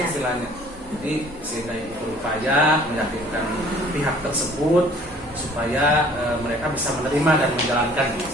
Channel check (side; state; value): both; normal; correlation 0.54